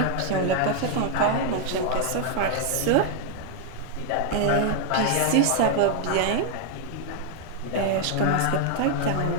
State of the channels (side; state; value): both; different; correlation 0.00